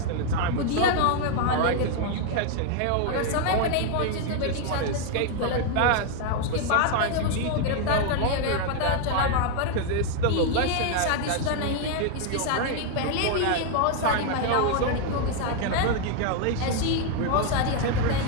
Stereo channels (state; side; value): different; both; correlation 0.00